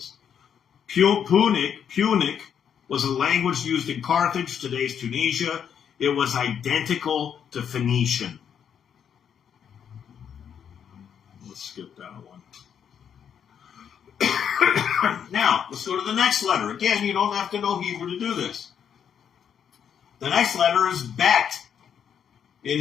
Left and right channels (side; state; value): right; quieter; 8.2 dB